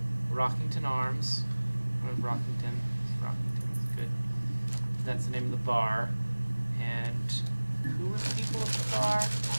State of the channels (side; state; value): both; inverted; correlation -1.00